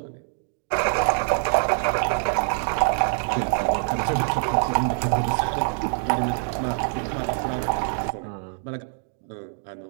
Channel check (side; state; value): left; silent; digital silence